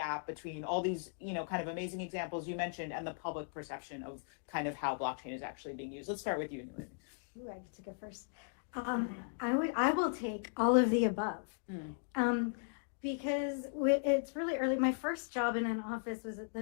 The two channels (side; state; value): right; silent; digital silence